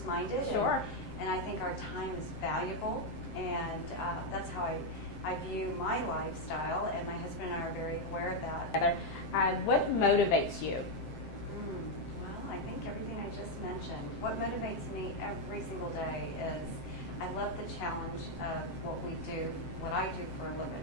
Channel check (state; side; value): late; right; 7.7 ms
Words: Sure. And I think our time is valuable. And that's how I view my lifestyle, and my husband and I are very aware of that. What motivates you? Well, I think everything I just mentioned. What motivates me every single day is I love the challenge of what I do for a